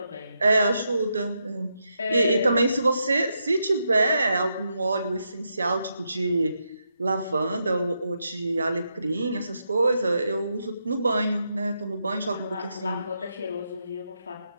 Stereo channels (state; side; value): inverted; both; correlation -0.83